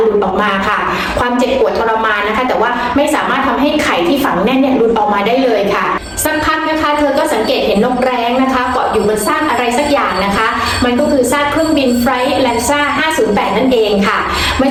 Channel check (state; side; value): identical; both; correlation 1.00